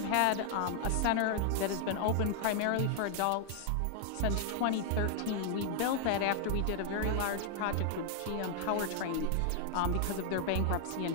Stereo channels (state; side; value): different; both; correlation 0.00